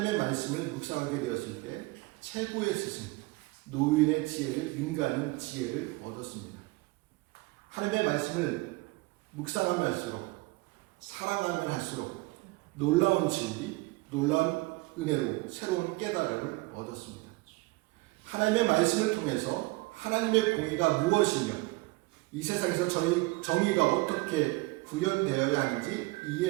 말씀을 묵상하게 되었을 때 최고의 스승, 노인의 지혜를 능가하는 지혜를 얻었습니다. 하나님의 말씀을 묵상하면 할수록, 사랑하면 할수록 놀라운 진리, 놀라운 은혜로 새로운 깨달음을 얻었습니다. 하나님의 말씀을 통해서 하나님의 공의가 무엇이며 이 세상에서 정의가 어떻게 구현되어야 하는지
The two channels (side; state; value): left; quieter; 23.4 dB